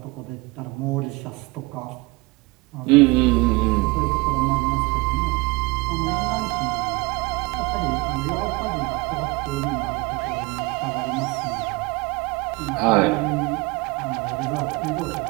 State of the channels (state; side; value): quieter; left; 24.5 dB